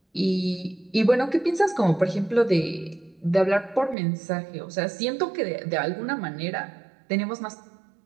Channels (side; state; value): left; drops out; at 4.0 s